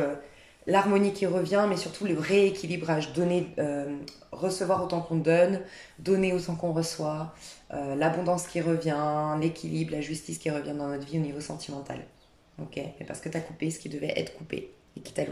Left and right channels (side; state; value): both; identical; correlation 1.00